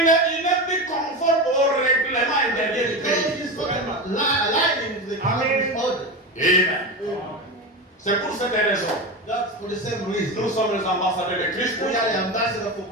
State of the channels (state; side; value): normal; both; correlation 0.21